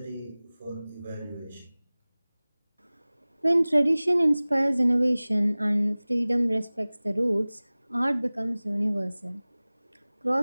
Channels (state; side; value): inverted; both; correlation -0.99